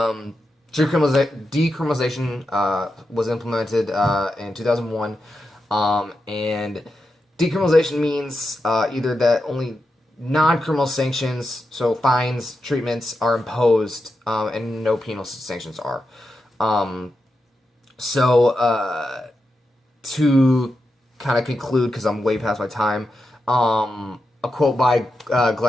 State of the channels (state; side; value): normal; both; correlation 0.88